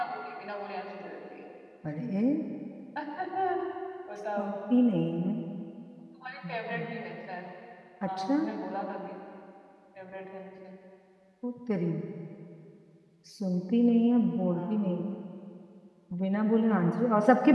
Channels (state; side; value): identical; both; correlation 1.00